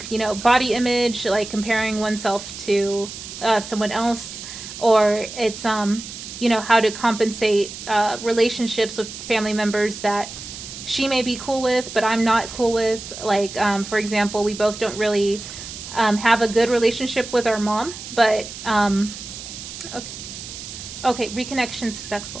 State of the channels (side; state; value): right; noise; hiss, 11 dB below the sound